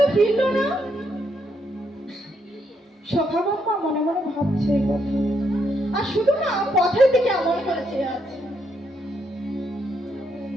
ফিরলো না। সখাবান মা মনে মনে ভাবছে এই কথা, আর শুধু না পথের দিকে এমন করে চেয়ে আছে।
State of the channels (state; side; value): normal; both; correlation 0.77